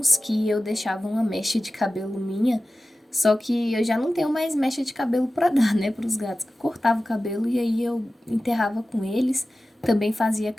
que eu deixava uma mecha de cabelo minha, só que eu já não tenho mais mecha de cabelo pra dar, né, pros gatos. Eu cortava o cabelo e aí eu enterrava com eles. Também fazia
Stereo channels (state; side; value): normal; both; correlation 0.95